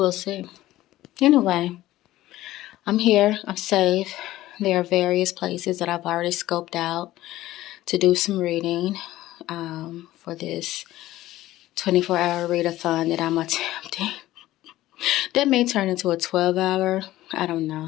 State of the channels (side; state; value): right; quieter; 15.6 dB